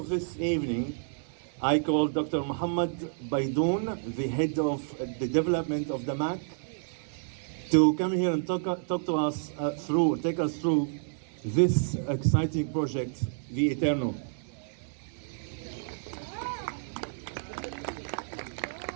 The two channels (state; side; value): silent; left; digital silence